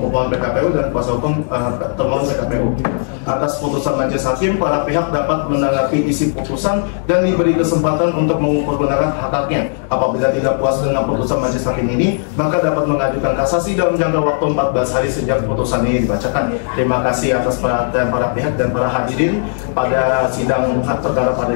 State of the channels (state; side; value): silent; right; digital silence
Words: pemohon PKPU dan kuasa hukum termohon PKPU. atas putusan majelis hakim, para pihak dapat menanggapi isi putusan dan diberi kesempatan untuk mengukur kebenaran hak-haknya. Apabila tidak puas dengan putusan majelis hakim ini, maka dapat mengajukan kasasi dalam jangka waktu 14 hari sejak putusan ini dibacakan. Terima kasih atas perhatian para pihak dan para hadirin pada sidang hak perkara pada